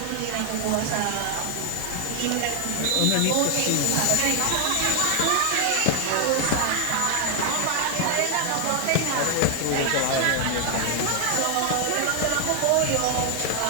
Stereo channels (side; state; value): both; different; correlation 0.00